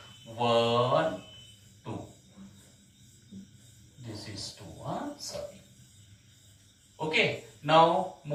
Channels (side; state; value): both; identical; correlation 1.00